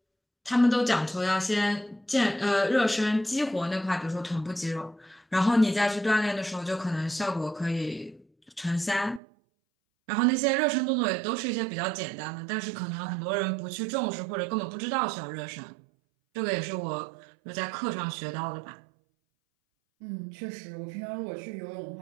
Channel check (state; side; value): drops out; left; at 9.2 s